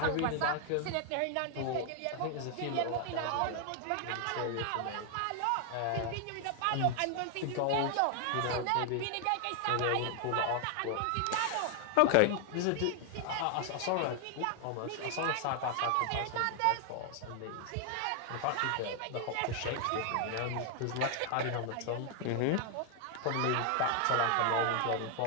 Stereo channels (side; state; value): both; different; correlation 0.00